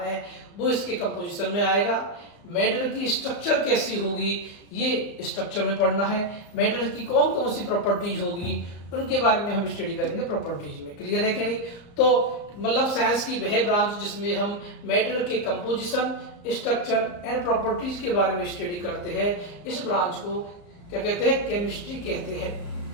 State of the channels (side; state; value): right; late; 35 ms